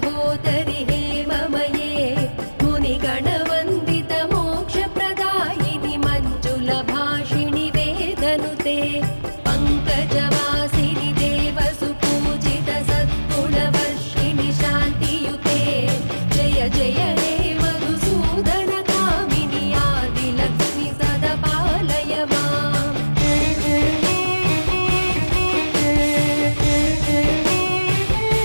हेममये मुनिगणवन्दित मोक्षप्रदायिनि मञ्जुलभाषिणि वेदनुते पङ्कजवासिनि देवसुपूजित सद्गुणवर्षिणि शान्तियुते जय जय हे मधुसूदन कामिनि आदिलक्ष्मि सदा पालय माम्।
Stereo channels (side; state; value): both; inverted; correlation -1.00